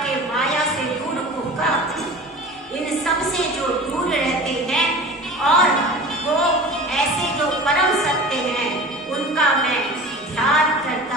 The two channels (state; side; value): normal; both; correlation 0.37